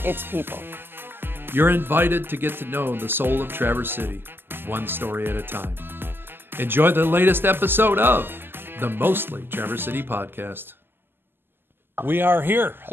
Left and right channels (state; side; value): late; left; 0.10 ms